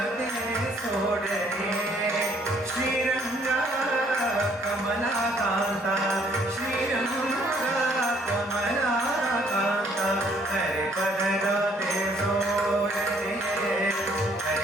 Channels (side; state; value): both; normal; correlation 0.64